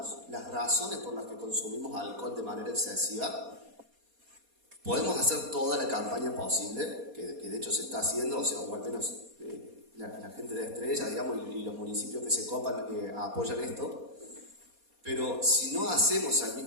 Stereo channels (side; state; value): left; late; 4.2 ms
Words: las razones por las que consumimos alcohol de manera excesiva, Podemos hacer toda la campaña posible, que de hecho se está haciendo, o sea, o al menos la gente de Estrella, digamos, y los municipios que se copan apoyan esto, pero si no hacemos al